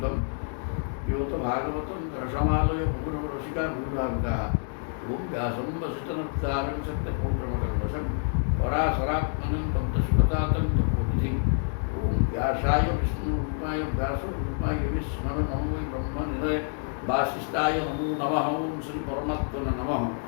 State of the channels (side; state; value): right; silent; 60 dB below the other